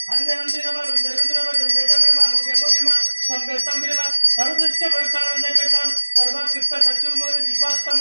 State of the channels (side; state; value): both; inverted; correlation -1.00